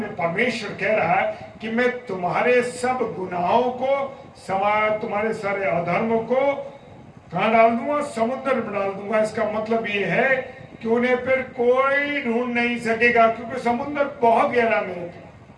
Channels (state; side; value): identical; both; correlation 1.00